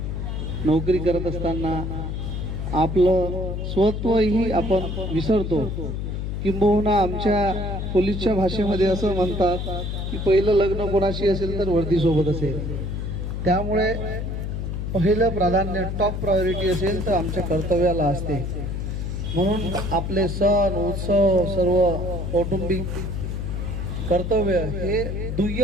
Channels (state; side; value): noise; left; hum, 3 dB below the sound